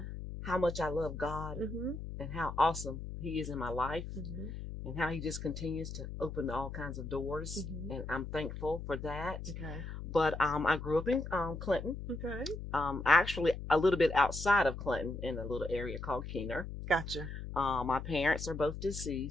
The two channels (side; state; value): left; noise; hum, 8 dB below the sound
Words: how much I love God Mhm. and how awesome He is in my life. Mhm. And how he just continues to open all kinds of doors. Mhm. And I'm thankful for that. Okay. But I grew up in Clinton, Okay. actually a little bit outside of Clinton in a little area called Keener. Gotcha. My parents are both